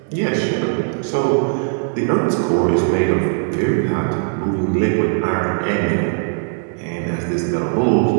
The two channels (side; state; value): left; silent; digital silence